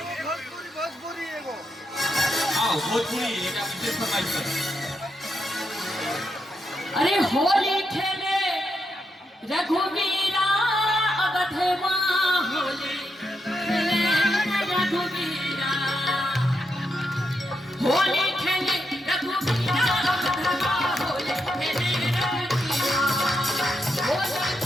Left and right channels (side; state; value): both; normal; correlation 0.83